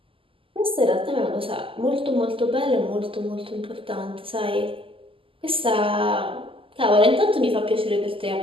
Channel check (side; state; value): left; late; 0.26 ms